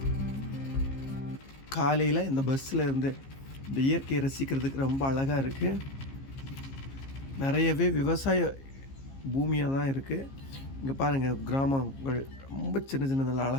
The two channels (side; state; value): right; late; 15 ms